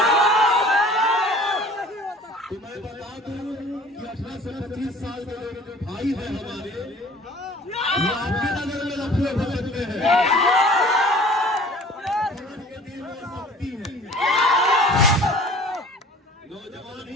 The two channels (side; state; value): both; normal; correlation 0.48